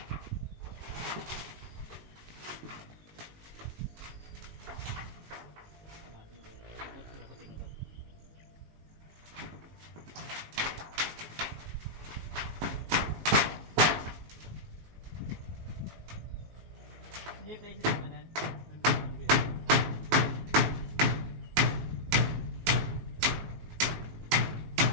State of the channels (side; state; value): left; late; 19 ms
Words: Hindi place ito manan.